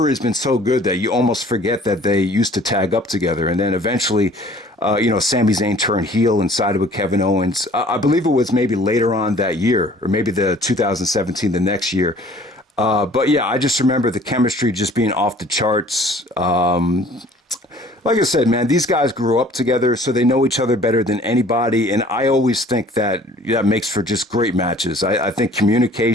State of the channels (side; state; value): both; normal; correlation 0.52